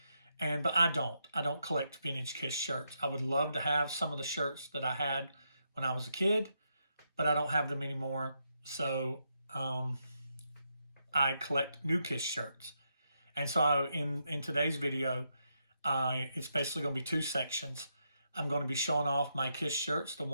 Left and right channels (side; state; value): both; inverted; correlation -0.81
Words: but I don't. I don't collect vintage Kiss shirts. I would love to have some of the shirts that I had when I was a kid, but I don't have them anymore. So I collect new Kiss shirts. And so in today's video, it's basically going to be two sections. I'm going to be showing off my Kiss shirts, the